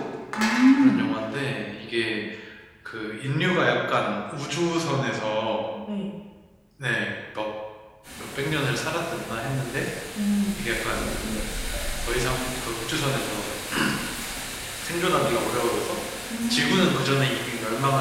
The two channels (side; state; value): both; identical; correlation 1.00